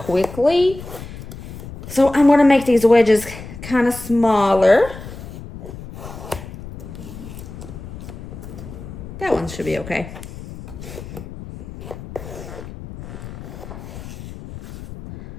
So I'm going to make these wedges kind of smaller. That one should be okay.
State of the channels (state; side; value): noise; left; rumble, 12 dB below the sound